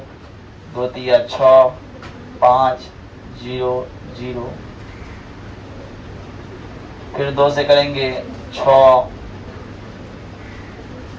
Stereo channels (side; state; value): both; identical; correlation 1.00